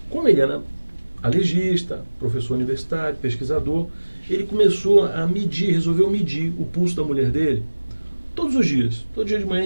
Como ele era alergista, professor universitário, pesquisador, ele começou a resolveu medir o pulso da mulher dele todos os dias. Todo dia de manhã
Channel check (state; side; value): inverted; both; correlation -1.00